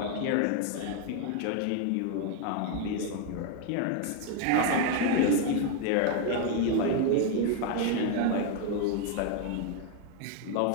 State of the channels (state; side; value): different; both; correlation 0.01